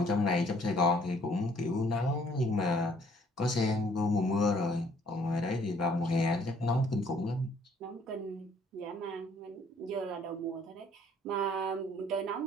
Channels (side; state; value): both; normal; correlation 0.61